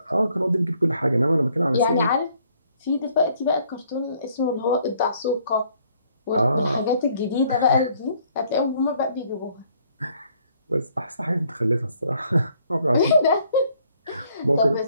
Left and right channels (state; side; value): inverted; both; correlation -0.65